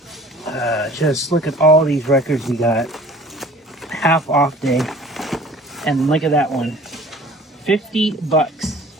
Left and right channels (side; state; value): both; normal; correlation 0.48